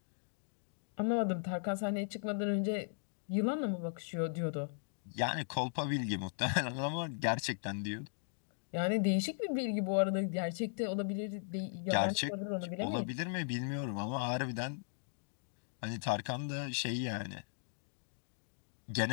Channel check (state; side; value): silent; right; digital silence